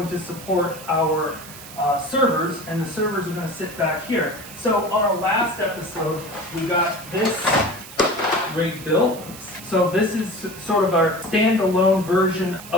to support our servers, and the servers are going to sit back here. So on our last episode we got this rig built. So this is sort of our standalone version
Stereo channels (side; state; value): right; noise; hiss, 15 dB below the sound